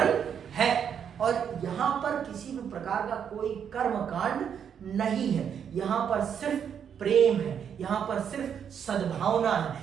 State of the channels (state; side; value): quieter; left; 8.0 dB